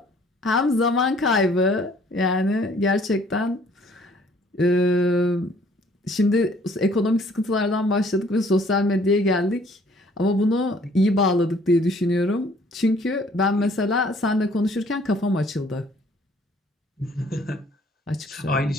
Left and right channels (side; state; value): both; normal; correlation 0.59